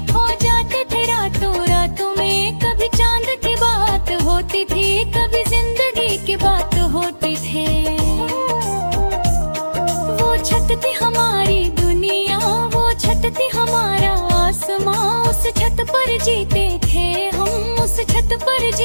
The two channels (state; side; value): inverted; both; correlation -1.00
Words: खो जाते थे रातों रातों में। कभी चांद की बात होती थी, कभी जिंदगी की बात होती थी। वो छत थी हमारी दुनिया, वो छत थी हमारा आसमां। उस छत पर जीते थे हम, उस छत पर